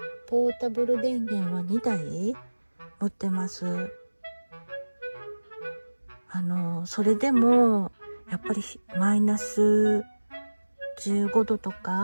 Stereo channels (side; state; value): both; inverted; correlation -1.00